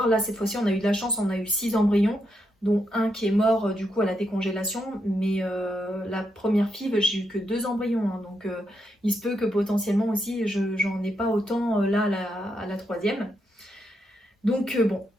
Là, cette fois-ci, on a eu de la chance, on a eu 6 embryons, dont un qui est mort du coup à la décongélation. Mais la première FIV, j'ai eu que 2 embryons. Hein, donc il se peut que potentiellement aussi, j'en ai pas autant là à la troisième. Donc bon,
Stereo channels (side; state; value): both; normal; correlation 0.81